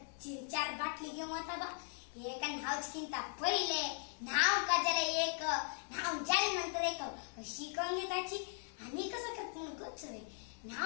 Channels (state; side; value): silent; right; 52 dB below the other